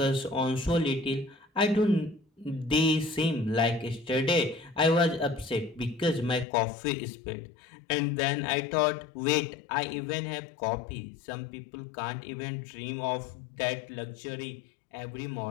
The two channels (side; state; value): right; drops out; at 6.5 s